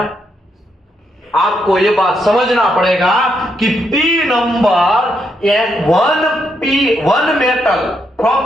आपको ये बात समझना पड़ेगा कि P number one metal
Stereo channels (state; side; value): normal; both; correlation 0.79